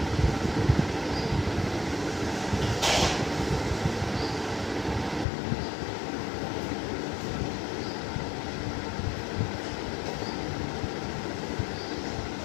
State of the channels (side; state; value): right; drops out; at 5.2 s